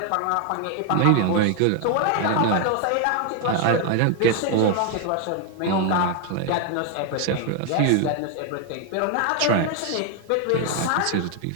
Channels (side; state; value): both; different; correlation 0.01